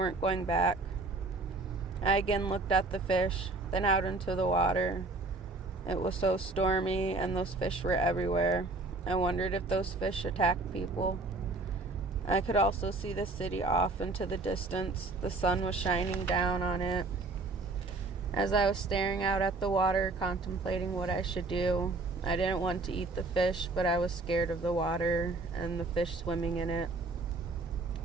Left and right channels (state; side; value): quieter; left; 3.3 dB